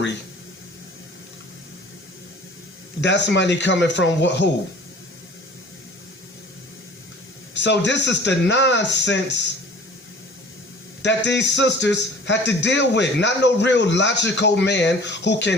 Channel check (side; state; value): both; normal; correlation 0.46